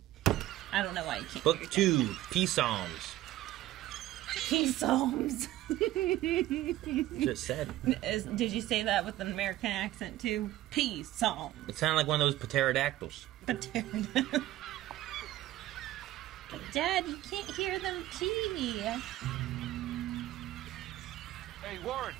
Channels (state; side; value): quieter; left; 15.1 dB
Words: I don't know why you can't. Book 2, Peace Psalms. Peace Psalms. Just said. Did you say that with an American accent too? Peace Psalms. It sounded like one of those pterodactyls. Dad, you can't hear them pee. Hey, Warren.